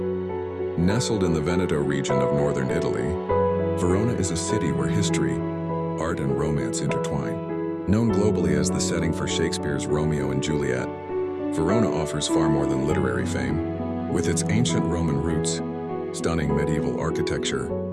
Nestled in the Veneto region of northern Italy, Verona is a city where history, art, and romance intertwine. Known globally as the setting for Shakespeare's Romeo and Juliet, Verona offers far more than literary fame. With its ancient Roman roots, stunning medieval architecture,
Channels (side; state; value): both; identical; correlation 1.00